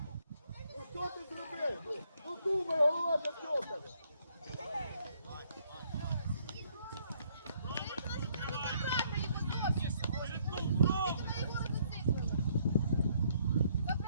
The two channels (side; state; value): both; inverted; correlation -0.68